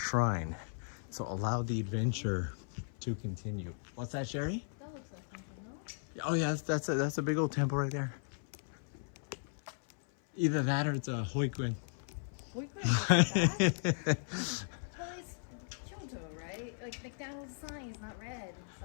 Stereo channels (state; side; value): silent; right; 53 dB below the other